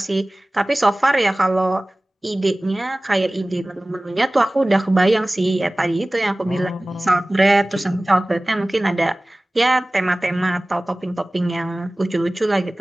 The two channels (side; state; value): both; normal; correlation 0.98